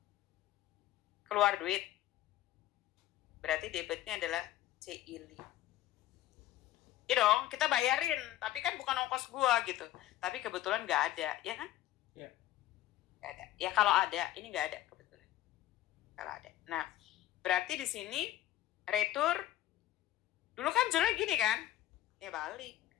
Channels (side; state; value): right; quieter; 14.0 dB